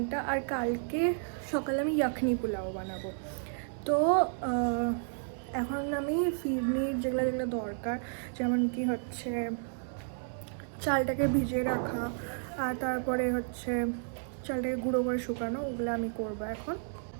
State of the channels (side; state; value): left; silent; 56 dB below the other